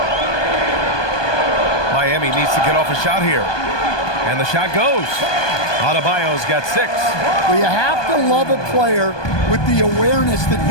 Miami needs to get off a shot here. And the shot goes. Adebayo's got 6. Well, you have to love a player with the awareness that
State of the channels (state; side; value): late; right; 1.2 ms